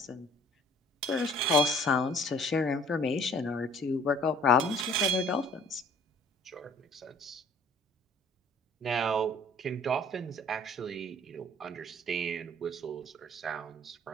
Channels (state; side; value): normal; both; correlation 0.54